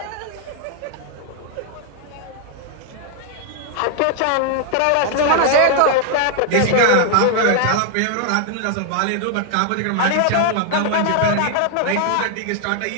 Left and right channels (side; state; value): both; different; correlation 0.00